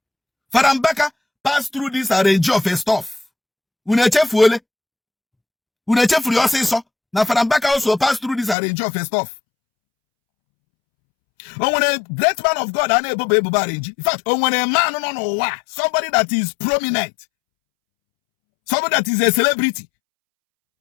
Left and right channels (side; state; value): right; drops out; at 8.6 s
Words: Fadambaka passed through this arrange of a stuff. Unechefu yoseso. Now Fadambaka also passed through this arrange of a stuff. When a great man of God, in fact, when a man, somebody that is prominent, somebody that is a celebrity,